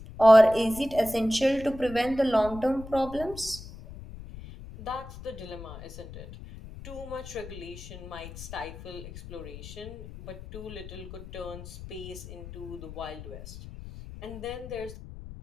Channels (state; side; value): noise; left; rumble, 13 dB below the sound